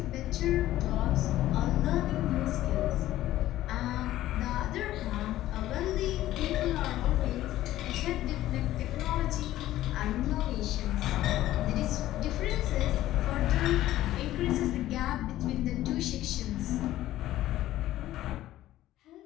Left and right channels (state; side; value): quieter; right; 14.4 dB